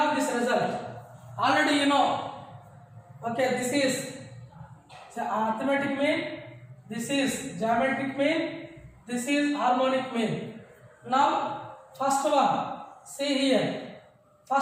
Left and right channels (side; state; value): both; identical; correlation 1.00